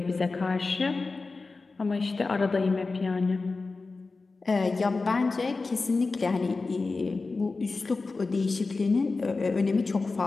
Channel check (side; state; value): right; quieter; 3.8 dB